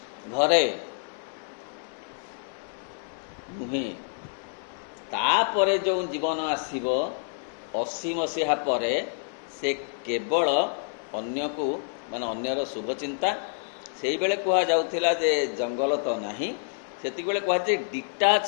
ଘରେ ନୁହେଁ। ତାପରେ ଯେଉଁ ଜୀବନ ଆସିବ 80 ମସିହା ପରେ, ସେ କେବଳ ଅନ୍ୟକୁ ମାନେ ଅନ୍ୟର ଶୁଭଚିନ୍ତା। ସେଇବେଳେ କୁହାଯାଉଥିଲା ଯେ ଜଙ୍ଗଲ ତ ନାହିଁ, ସେତିକିବେଳେ କୁହାଯାଏ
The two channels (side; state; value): right; silent; digital silence